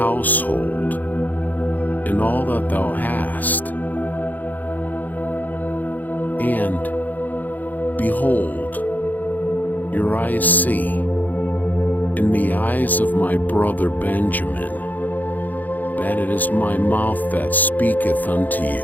and all that thou hast. And, behold, your eyes see, in the eyes of my brother Benjamin, that it is my mouth that speaketh unto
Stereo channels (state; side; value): late; right; 0.083 ms